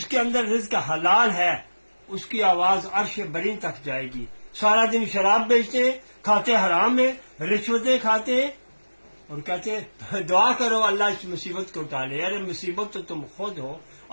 अंदर रिज्क हलाल है, उसकी आवाज अर्श बरीन तक जाएगी। सारा दिन शराब बेचते, खाते हराम में, रिश्वतें खाते, और कहते दुआ करो अल्लाह इस मुसीबत को टाले। अरे मुसीबत तो तुम खुद हो,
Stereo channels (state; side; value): inverted; both; correlation -1.00